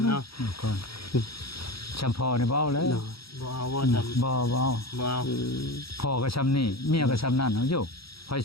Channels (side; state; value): right; late; 0.75 ms